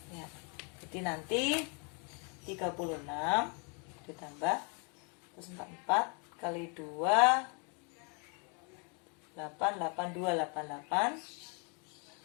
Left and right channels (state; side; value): quieter; right; 35.5 dB